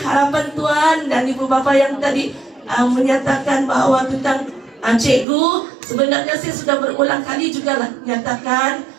tuan dan ibu bapa yang tadi menyatakan bahwa tentang cikgu, sebenarnya saya sudah berulang kali juga lah menyatakan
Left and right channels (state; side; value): drops out; left; at 5.2 s